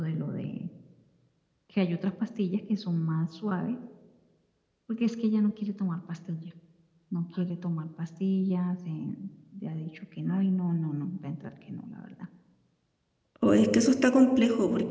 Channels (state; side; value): identical; both; correlation 1.00